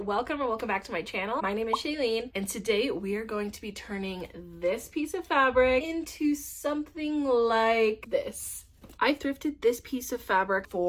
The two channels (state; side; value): identical; both; correlation 1.00